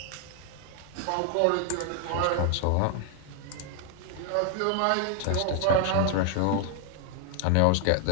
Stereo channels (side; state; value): both; different; correlation 0.00